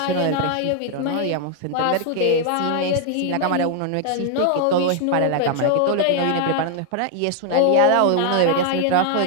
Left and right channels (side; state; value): both; different; correlation 0.00